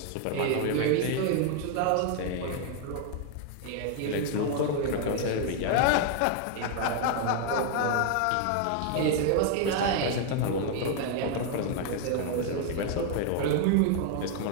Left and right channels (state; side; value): different; both; correlation 0.00